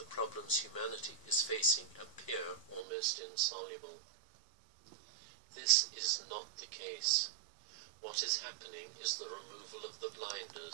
problems humanity is facing appear almost insoluble. This is not the case. What is happening is the removal of the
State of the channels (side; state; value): left; drops out; at 2.9 s